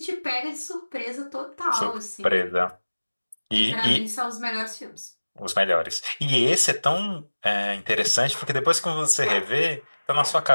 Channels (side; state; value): both; inverted; correlation -1.00